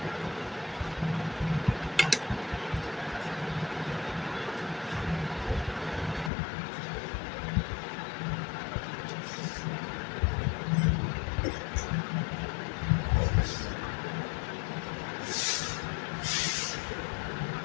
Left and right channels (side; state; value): right; drops out; at 6.3 s